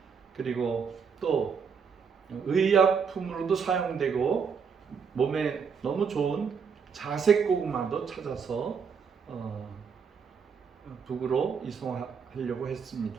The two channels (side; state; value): left; quieter; 6.2 dB